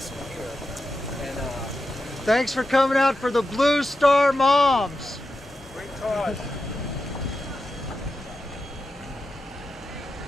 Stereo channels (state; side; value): normal; both; correlation 0.89